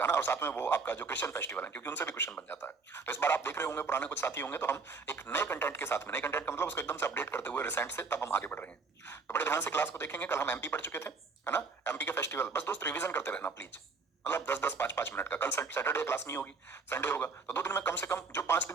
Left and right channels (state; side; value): quieter; left; 4.5 dB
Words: ना। और साथ में वो आपका जो क्रिश्चियन फेस्टिवल है, क्योंकि उनसे भी क्वेश्चन बन जाता है। तो इस बार आप देख रहे होंगे, पुराने कुछ साथी होंगे, तो हम एक नए कंटेंट के साथ में, नए कंटेंट का मतलब उसको एकदम से अपडेट करते हुए रिसेंट से, तब हम आगे बढ़ रहे हैं। तो बड़े ध्यान से क्लास को देखेंगे। कल हम एमपी पढ़ चुके थे, है ना, एमपी के फेस्टिवल। बस दोस्त रिवीजन करते रहना प्लीज, मतलब 10-10, 5-5 मिनट का। कल सैटरडे क्लास नहीं होगी, संडे होगा, तो 2 दिन में कम से कम जो 5